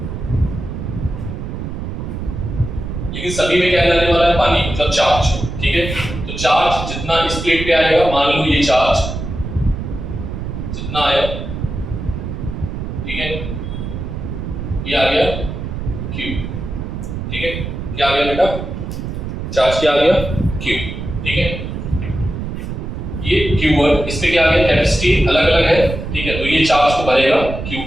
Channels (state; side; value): noise; right; rumble, 6 dB below the sound